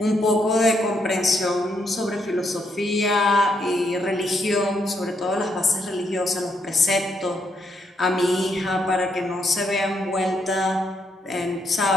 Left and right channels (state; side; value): normal; both; correlation 0.76